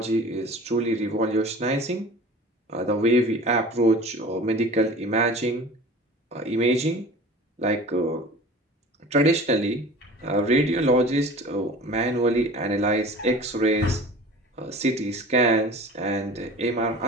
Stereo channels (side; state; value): both; normal; correlation 0.40